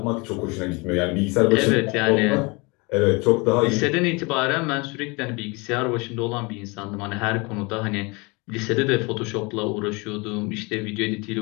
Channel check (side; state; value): right; quieter; 27.8 dB